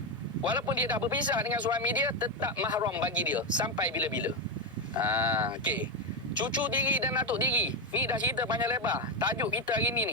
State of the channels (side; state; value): both; normal; correlation 0.09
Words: Walaupun dia dah berpisah dengan suami dia, tetap mahram bagi dia sampai bila-bila. Okey. Cucu tiri dan atuk tiri. Ni dah cerita panjang lebar. Tajuk kita hari